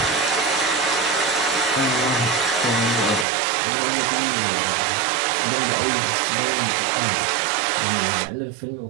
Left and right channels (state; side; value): drops out; left; at 3.2 s